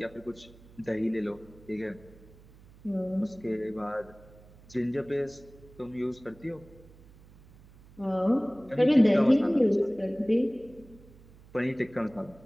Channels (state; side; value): noise; right; hum, 23 dB below the sound